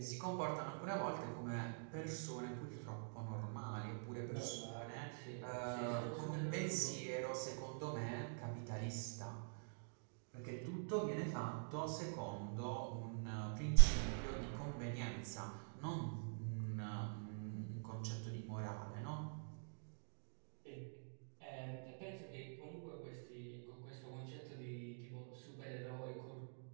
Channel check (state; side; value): silent; left; digital silence